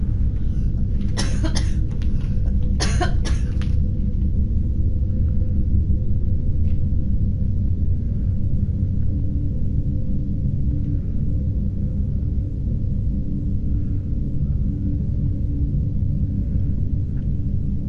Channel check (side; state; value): both; identical; correlation 1.00